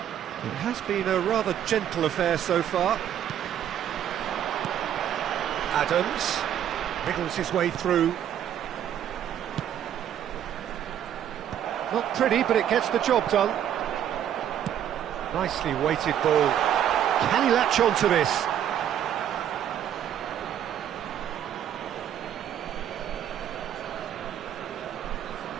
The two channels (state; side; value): quieter; left; 10.2 dB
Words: It has been a rather gentle affair so far. Adams wriggles his way through. Not pretty, but it gets the job done. Nicely weighted ball. Can he latch on to this?